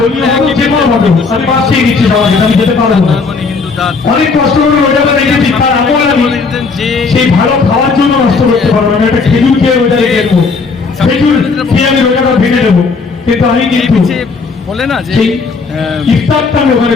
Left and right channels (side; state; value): right; quieter; 4.5 dB